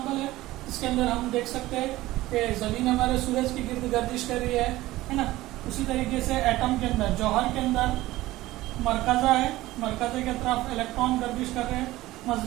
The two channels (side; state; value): left; quieter; 17.3 dB